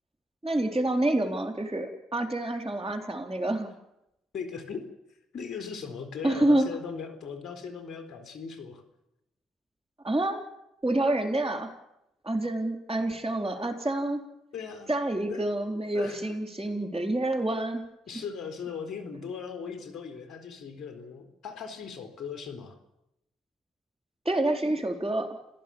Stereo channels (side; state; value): both; normal; correlation 0.83